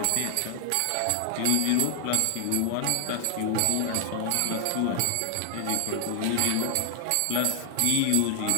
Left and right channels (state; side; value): different; both; correlation 0.00